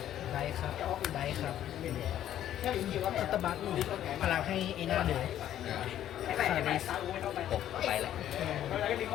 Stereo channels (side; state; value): right; quieter; 11.5 dB